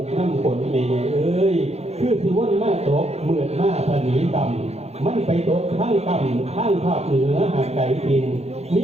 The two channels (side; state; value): left; late; 0.31 ms